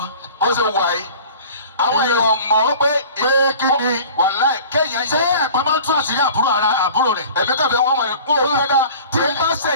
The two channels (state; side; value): inverted; both; correlation -0.43